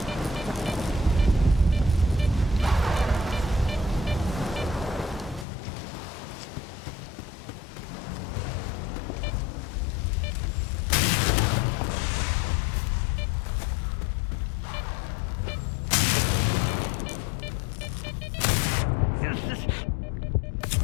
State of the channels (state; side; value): drops out; right; at 5.5 s